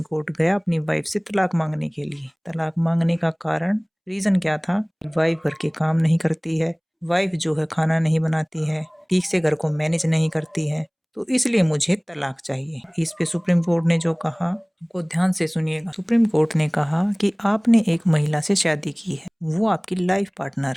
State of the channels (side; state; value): both; identical; correlation 1.00